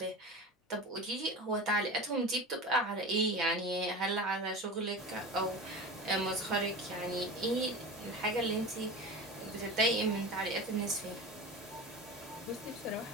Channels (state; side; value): normal; both; correlation 0.30